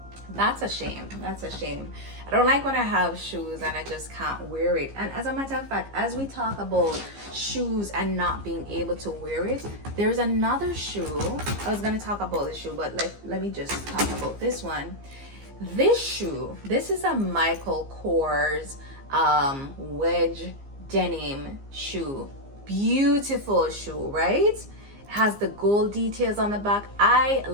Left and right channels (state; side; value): late; left; 15 ms